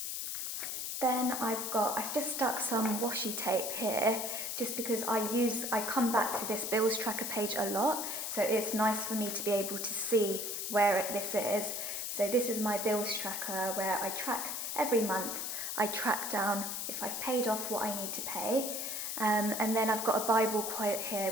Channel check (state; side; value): noise; left; hiss, 3 dB below the sound